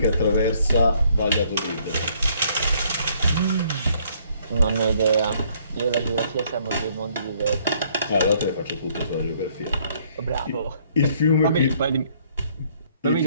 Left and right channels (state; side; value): inverted; both; correlation -0.65